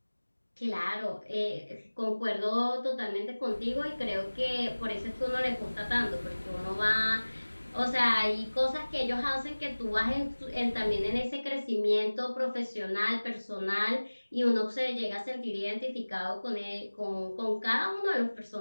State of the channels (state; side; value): inverted; both; correlation -1.00